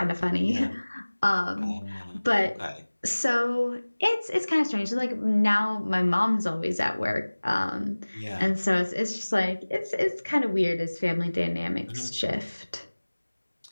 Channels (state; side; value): inverted; both; correlation -1.00